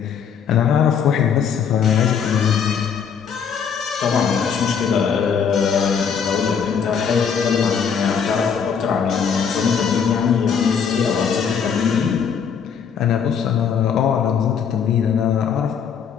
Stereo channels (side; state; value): right; quieter; 7.0 dB